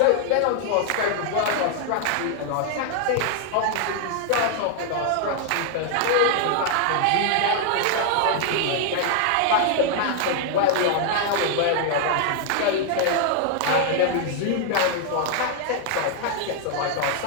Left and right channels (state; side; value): different; both; correlation 0.00